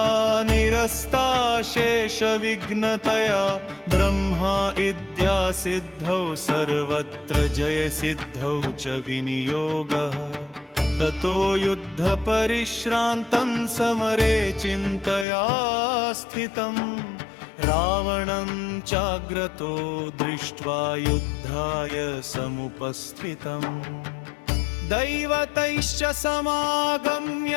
निरस्ता शेषविघ्नतया ब्रह्मा इद्या सिद्धौ सर्वत्र जयसिद्धौ च विनियोगः ततो युद्धपरिश्रान्तं समरे चिन्तया स्थितं रावणं चाग्रतो दृष्ट्वा युद्धाय समुपस्थितम् दैवतैश्च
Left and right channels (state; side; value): drops out; right; at 15.2 s